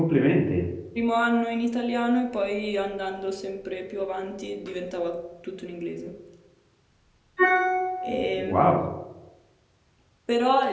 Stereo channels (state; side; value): identical; both; correlation 1.00